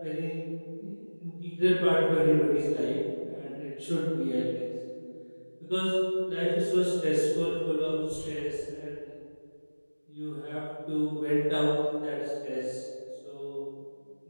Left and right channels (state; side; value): inverted; both; correlation -1.00